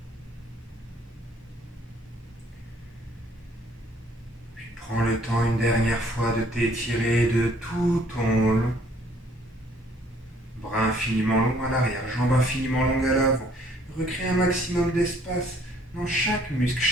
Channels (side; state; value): both; normal; correlation 0.61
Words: une dernière fois de t'étirer de tout ton long. Bras infiniment longs à l'arrière, jambes infiniment longues à l'avant. Recrée un maximum d'espace dans chaque muscle,